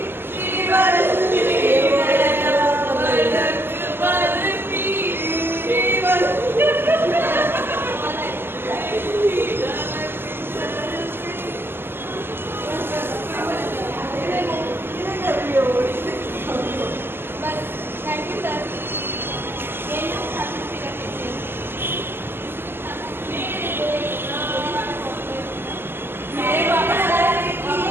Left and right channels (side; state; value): left; late; 0.11 ms